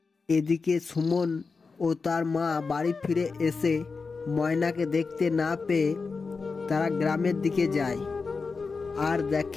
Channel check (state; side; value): quieter; right; 4.6 dB